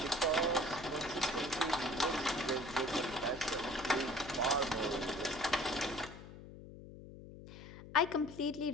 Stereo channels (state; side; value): noise; left; hum, 15 dB below the sound